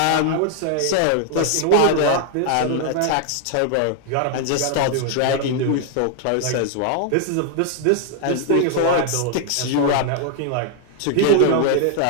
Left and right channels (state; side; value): different; both; correlation 0.00